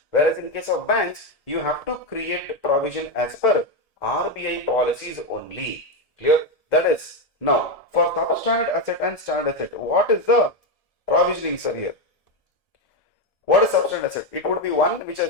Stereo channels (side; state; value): right; late; 1.7 ms